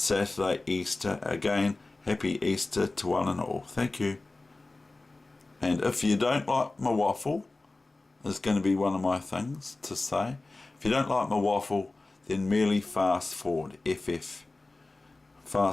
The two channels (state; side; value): quieter; right; 3.2 dB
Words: Easter. Again, happy Easter to one and all. Thank you. And if you don't like my waffle, is going to be one of my things to say. If you don't like my waffle, then merely fast forward. FF.